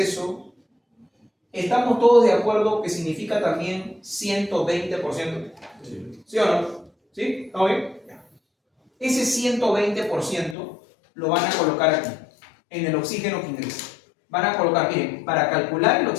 ¿estamos todos de acuerdo que significa también 120%? ¿Sí o no? ¿Sí? ¿Está bien? Ese 120% lo van a colocar aquí, en el oxígeno que ingresa. Van a colocar, miren, para calcular el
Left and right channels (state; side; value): drops out; right; at 10.6 s